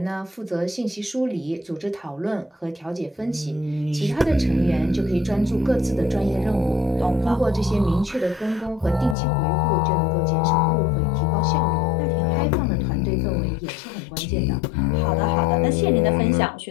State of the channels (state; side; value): drops out; right; at 9.2 s